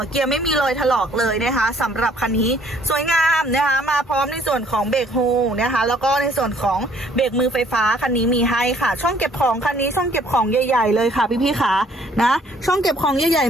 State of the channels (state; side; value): normal; both; correlation 0.61